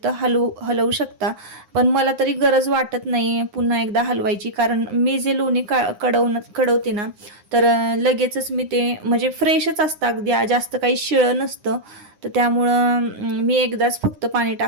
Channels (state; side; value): late; left; 9.7 ms